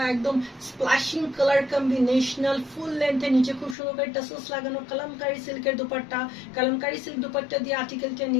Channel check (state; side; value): drops out; right; at 3.8 s